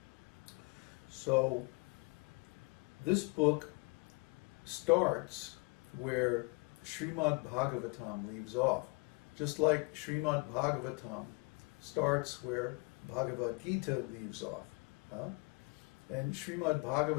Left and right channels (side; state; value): right; quieter; 30.2 dB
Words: So this book starts where Śrīmad-Bhāgavatam leaves off. Just like Śrīmad-Bhāgavatam starts where Bhagavad-gītā leaves off. And